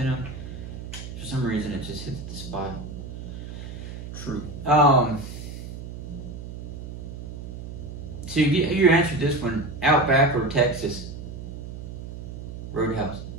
them. For some reason, it just hits the spot. True. So you answered this one: Outback or Texas Roadhouse?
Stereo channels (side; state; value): right; noise; hum, 9 dB below the sound